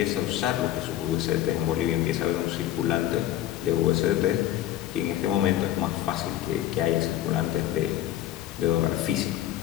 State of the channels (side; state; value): right; quieter; 13.0 dB